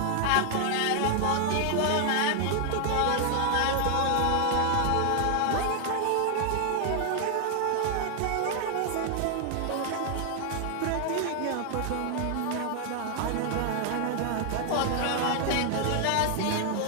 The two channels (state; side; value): different; both; correlation 0.00